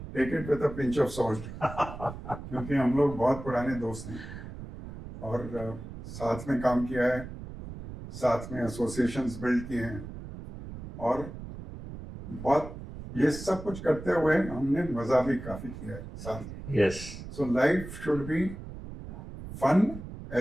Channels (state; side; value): noise; right; rumble, 11 dB below the sound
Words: take it with a pinch of salt. क्योंकि हम लोग बहुत पुराने दोस्त हैं और साथ में काम किया है, साथ में एसोसिएशंस बिल्ड किए हैं और बहुत ये सब कुछ करते हुए हमने मजा भी काफी किया है साथ. Yes. So life should be fun